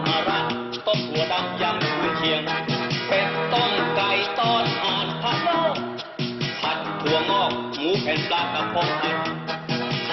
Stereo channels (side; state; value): both; identical; correlation 1.00